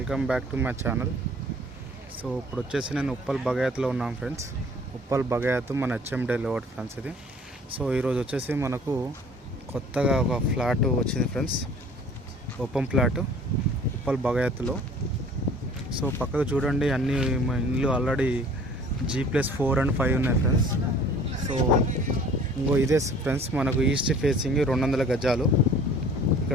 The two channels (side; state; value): both; normal; correlation 0.51